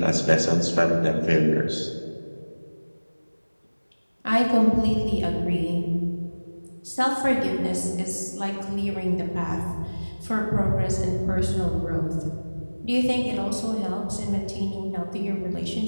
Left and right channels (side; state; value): both; inverted; correlation -1.00